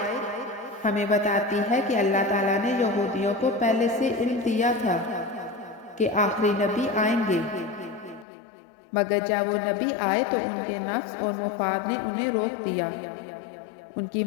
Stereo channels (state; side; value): drops out; right; at 8.2 s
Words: ہمیں بتاتی ہے کہ اللہ تعالیٰ نے یہودیوں کو پہلے سے علم دیا تھا کہ آخری نبی آئیں گے، مگر جب وہ نبی آئے تو ان کے نفس اور مفاد نے انہیں روک دیا۔ ان کی